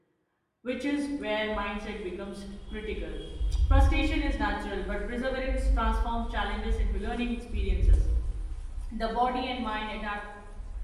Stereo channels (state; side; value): identical; both; correlation 1.00